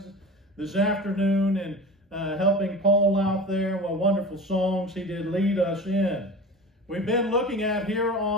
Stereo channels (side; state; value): both; normal; correlation 0.34